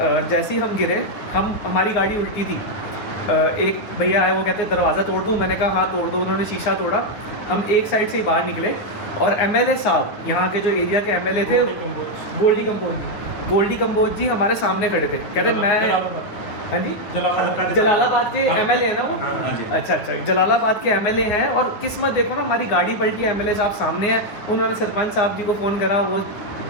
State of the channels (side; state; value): right; late; 9.8 ms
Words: जैसे ही हम गिरे, हमारी गाड़ी उल्टी थी। एक भैया आए, वो कहते हैं दरवाज़ा तोड़ दूँ। मैंने कहा हाँ तोड़ दो। उन्होंने शीशा तोड़ा। हम एक साइड से ही बाहर निकले, और एमएलए साहब, यहाँ के जो एरिया के एमएलए थे, गोल्डी कंबोज जी हमारे सामने खड़े थे। कहते मैं, हाँ जी, जलालाबाद के एमएलए हैं ना वो। अच्छा, जलालाबाद के एमएलए हैं। और किस्मत देखो ना, हमारी गाड़ी पलटी, एमएलए साहब सामने हैं। उन्होंने सरपंच साहब जी को फ़ोन करा, वो